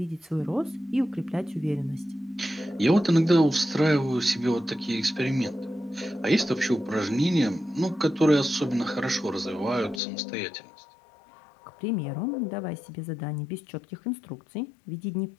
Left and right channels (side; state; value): right; drops out; at 10.0 s